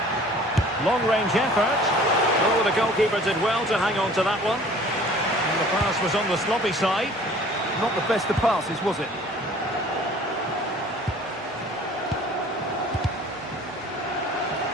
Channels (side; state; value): both; normal; correlation 0.49